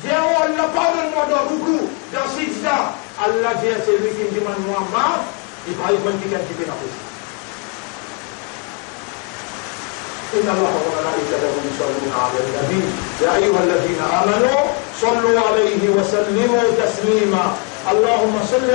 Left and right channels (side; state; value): right; quieter; 33.5 dB